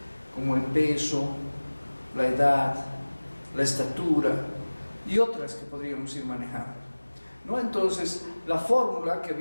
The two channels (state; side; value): inverted; both; correlation -1.00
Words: como el peso, la edad, la estatura y otras que podríamos ir manejando, ¿no? Entonces, la fórmula que